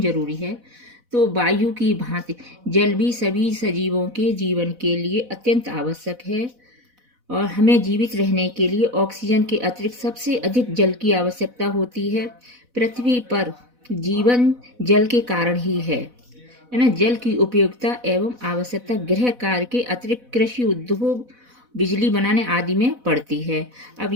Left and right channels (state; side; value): late; left; 4.1 ms